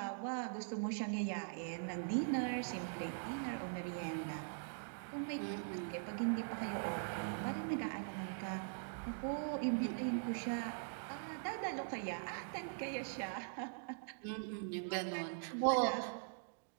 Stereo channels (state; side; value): silent; left; digital silence